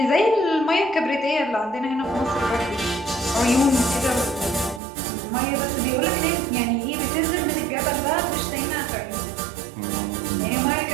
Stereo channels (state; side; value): drops out; left; at 4.8 s